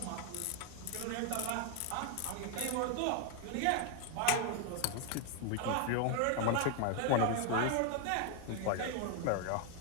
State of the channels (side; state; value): both; different; correlation 0.00